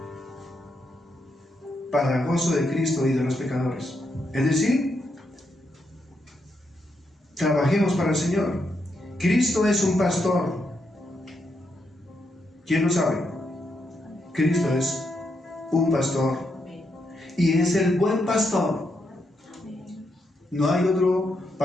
Para gozo de Cristo y de los pecadores. Es decir, trabajemos para el Señor. Cristo es un pastor. ¿Quién lo sabe? Cristo es un pastor. Y es el buen pastor. No hay otro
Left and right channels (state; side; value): normal; both; correlation 0.81